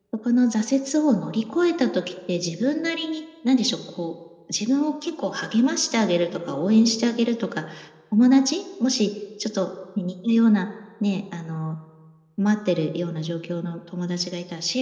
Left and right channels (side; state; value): both; identical; correlation 1.00